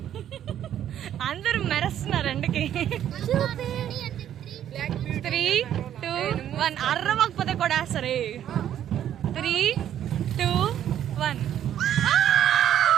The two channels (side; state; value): left; quieter; 10.6 dB